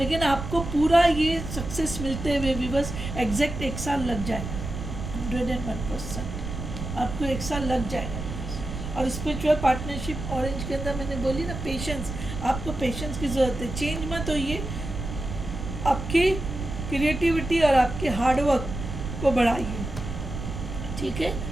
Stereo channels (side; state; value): right; noise; rumble, 7 dB below the sound